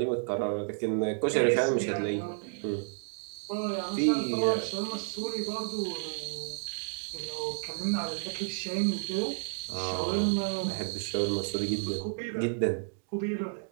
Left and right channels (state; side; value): silent; left; digital silence